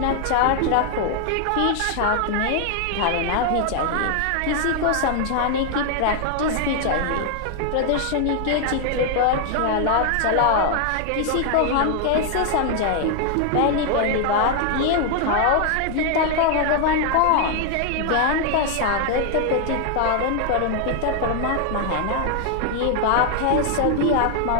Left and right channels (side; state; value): both; different; correlation 0.00